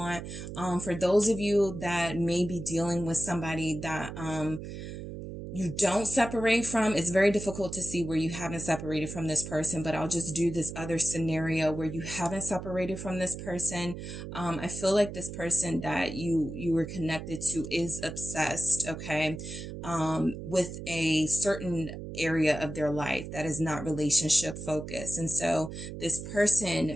For those of you that may be dealing with somebody that you don't separate from, it's very difficult to see where you haven't separated from this person, but I'll just do this other scenario where you haven't separated from this person. I feel like this person that you were connected to is obsessed, okay, with a certain area of their life that is not relationship focused. And so this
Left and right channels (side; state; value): right; noise; hum, 9 dB below the sound